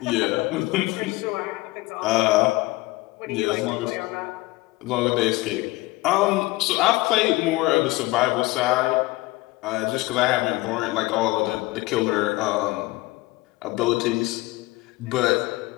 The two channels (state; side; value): quieter; right; 20.7 dB